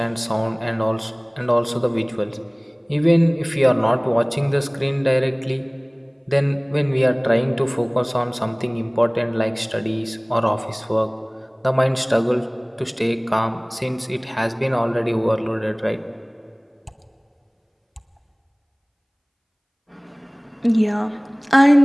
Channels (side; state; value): both; identical; correlation 1.00